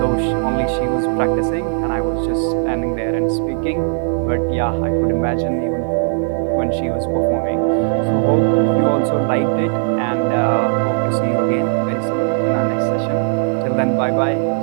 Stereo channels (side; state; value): left; silent; digital silence